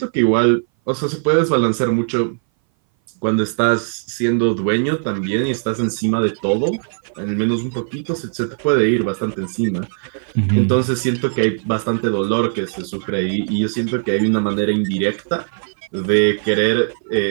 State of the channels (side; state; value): left; silent; 60 dB below the other